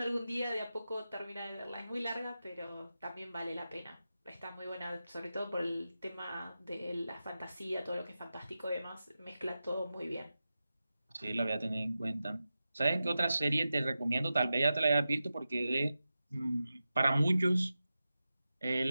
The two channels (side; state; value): both; inverted; correlation -0.92